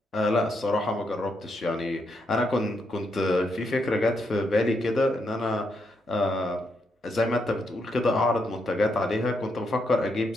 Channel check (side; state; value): both; normal; correlation 0.80